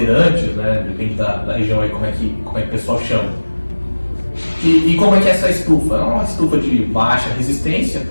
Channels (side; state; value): both; inverted; correlation -1.00